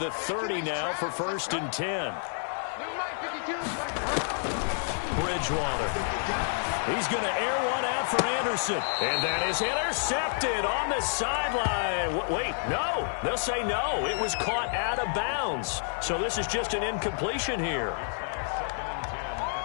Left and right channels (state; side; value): silent; right; digital silence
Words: 30 now for first and 10. Bridgewater. He's going to air one out for Anderson. And that is intercepted on the sideline. Wait, no. They'll say no. It was caught out of bounds. So this is just an incompletion here. Second and 10